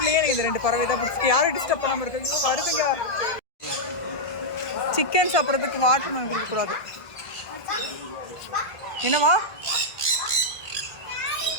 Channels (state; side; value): late; right; 1.7 ms